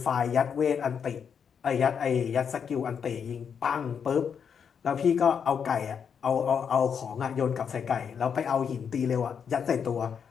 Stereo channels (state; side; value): quieter; right; 7.1 dB